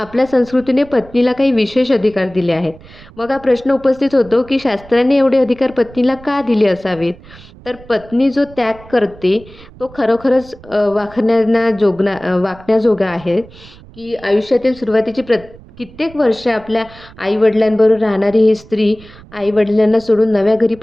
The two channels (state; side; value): noise; right; rumble, 21 dB below the sound